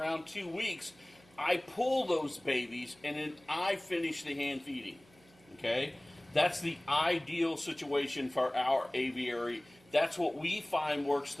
2 weeks, I pull those babies and then I finish the hand feeding. Okay? That's the ideal situation for our aviary. That's what we find works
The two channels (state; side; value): noise; right; hum, 28 dB below the sound